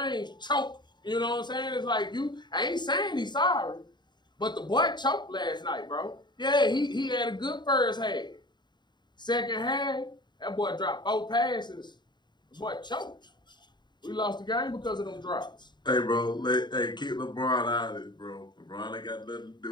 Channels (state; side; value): late; right; 0.21 ms